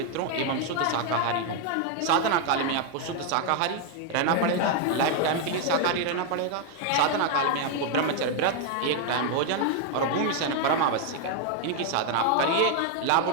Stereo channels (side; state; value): both; different; correlation 0.01